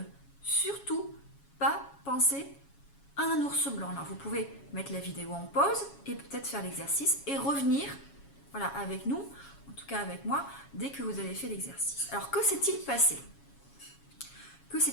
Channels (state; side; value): late; right; 7.2 ms